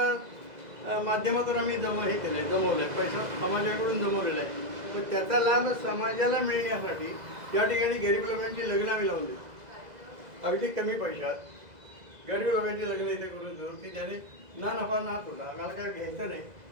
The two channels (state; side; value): late; left; 2.0 ms